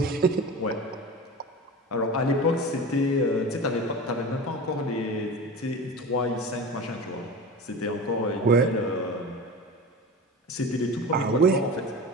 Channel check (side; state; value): both; normal; correlation 0.31